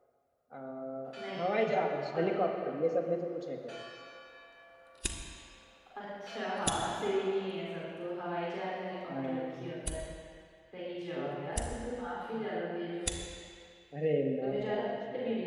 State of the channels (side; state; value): both; identical; correlation 1.00